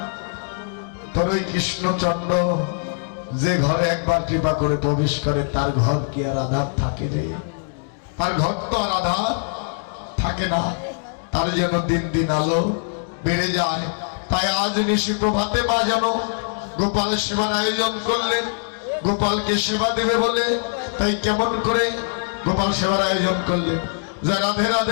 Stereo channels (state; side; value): silent; right; digital silence